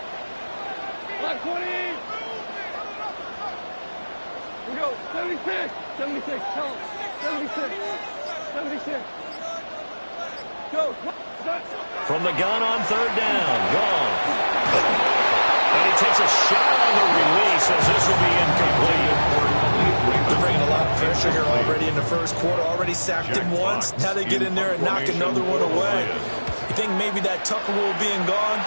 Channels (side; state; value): both; inverted; correlation -1.00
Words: We go, 76, 76, tell him, 76, 76. Go. From the gun on 3rd down, gone. And he takes a shot on the release as this will be incomplete. They're bringing a lot of pressure here already in the 1st quarter. Already sacked him once. Now they get in there and knock another one away. You think maybe that Tucker rule being gone